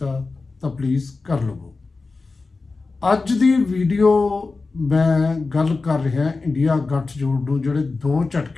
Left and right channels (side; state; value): right; quieter; 3.9 dB